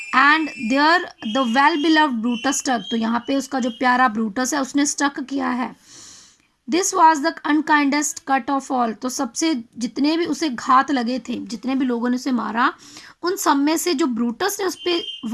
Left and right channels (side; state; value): both; identical; correlation 1.00